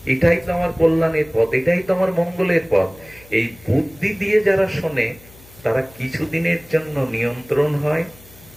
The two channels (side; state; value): left; noise; hum, 24 dB below the sound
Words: এটাই তো আমার কল্যাণের পথ, এটাই তো আমার মঙ্গলের পথ। এই বুদ্ধি দিয়ে যারা শোনে, তারা কিছুদিনের জন্য নিয়ন্ত্রণ হয়,